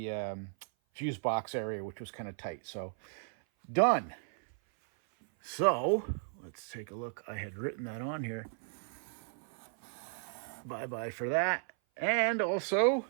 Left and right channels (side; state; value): left; silent; 54 dB below the other